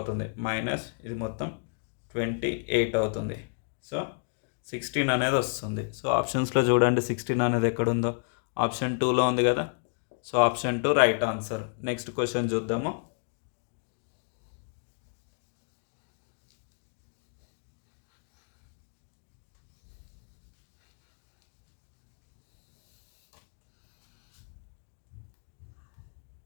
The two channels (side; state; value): right; silent; digital silence